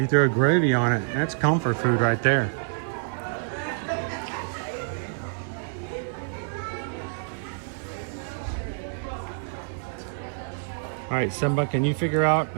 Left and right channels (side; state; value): left; silent; digital silence